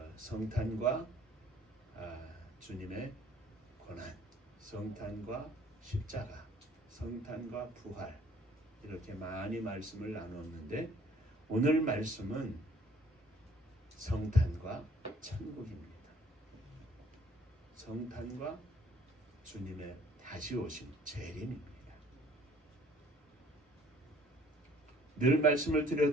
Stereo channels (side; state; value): both; normal; correlation 0.57